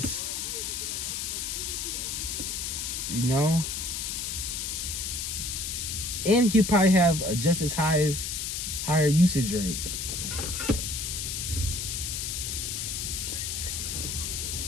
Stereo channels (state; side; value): noise; left; hiss, 3 dB below the sound